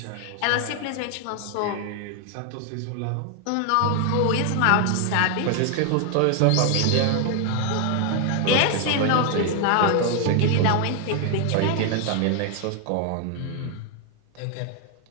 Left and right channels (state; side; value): different; both; correlation 0.00